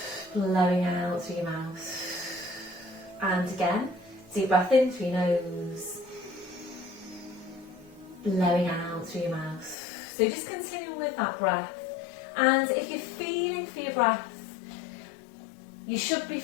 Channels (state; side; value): drops out; right; at 9.8 s